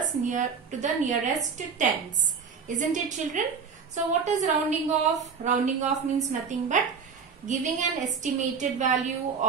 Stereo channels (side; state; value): left; quieter; 5.9 dB